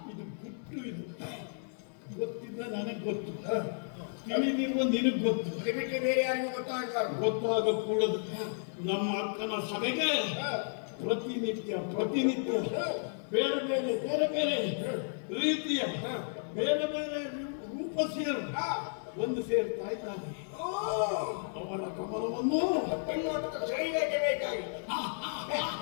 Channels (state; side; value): silent; right; 56 dB below the other